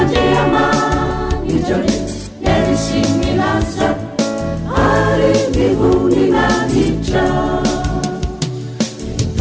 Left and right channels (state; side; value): identical; both; correlation 1.00